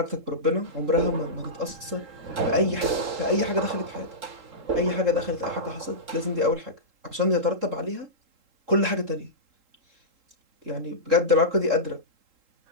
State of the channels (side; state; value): left; late; 3.8 ms